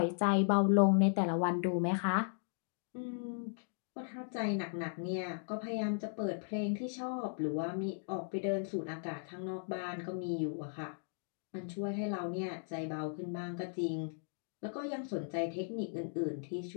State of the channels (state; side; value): silent; right; digital silence